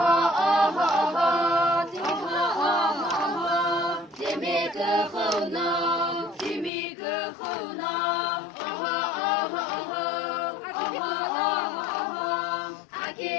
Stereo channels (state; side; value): drops out; right; at 6.7 s